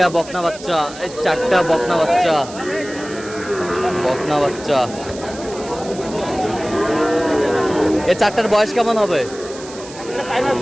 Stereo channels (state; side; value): noise; right; hiss, 16 dB below the sound